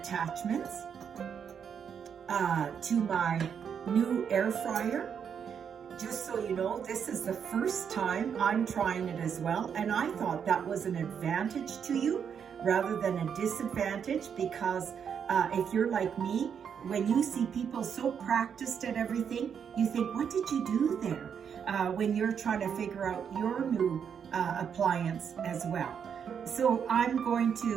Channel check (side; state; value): left; quieter; 7.5 dB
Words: to my new air fryer. Just so you know, this is the first time I'm trying it as well, and I thought that was an advantage to you rather than a disadvantage, because if you're like me, when you see people so practiced at everything, you think, what did you do there? When you're trying to figure out your new appliance as well. So I'm going